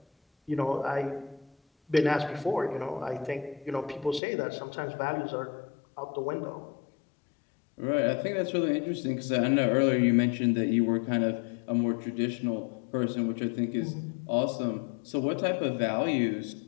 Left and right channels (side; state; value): right; drops out; at 4.2 s